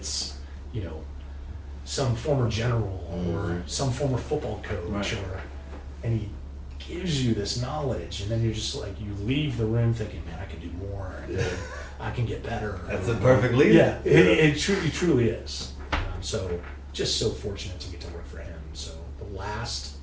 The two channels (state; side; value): identical; both; correlation 1.00